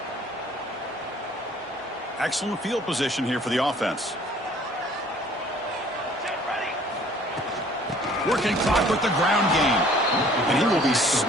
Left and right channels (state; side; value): normal; both; correlation 0.55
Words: Excellent field position here for the offense. Working clock with the ground game. And he will be